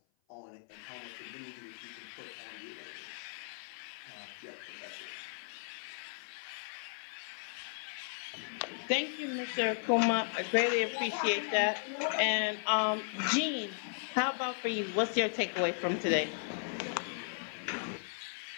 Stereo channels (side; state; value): right; silent; 54 dB below the other